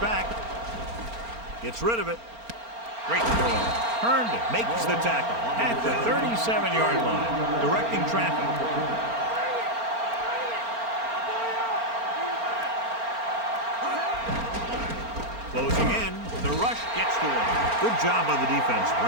Gets rid of it. Great throw. Herndon makes the tackle at the 37-yard line. Directing traffic. Closing in. The rush gets to him. Good job by the defense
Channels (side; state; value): left; late; 4.3 ms